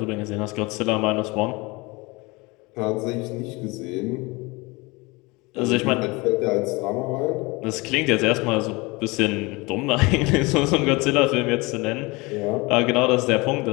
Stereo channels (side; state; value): right; quieter; 24.8 dB